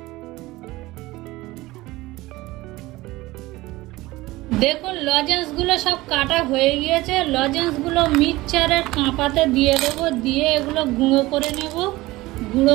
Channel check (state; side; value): quieter; left; 19.3 dB